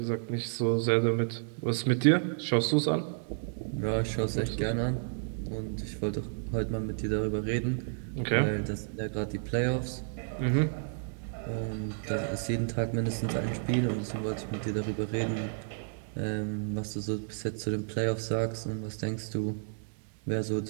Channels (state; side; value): silent; left; digital silence